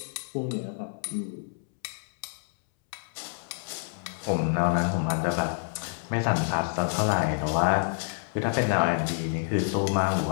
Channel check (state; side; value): silent; right; 59 dB below the other